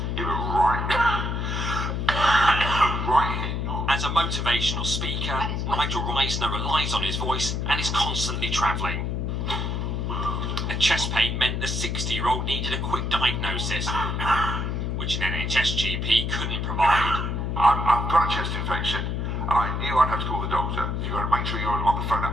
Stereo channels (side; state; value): left; noise; hum, 1 dB below the sound